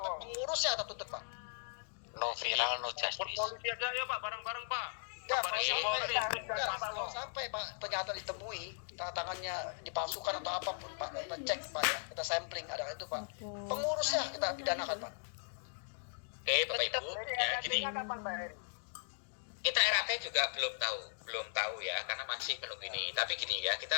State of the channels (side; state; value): right; silent; digital silence